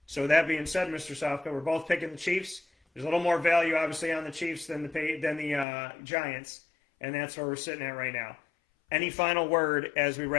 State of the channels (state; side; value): drops out; right; at 5.7 s